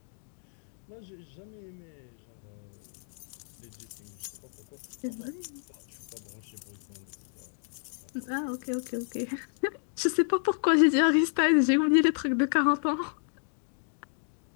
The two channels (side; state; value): right; silent; 57 dB below the other